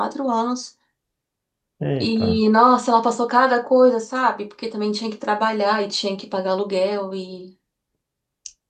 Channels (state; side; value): identical; both; correlation 1.00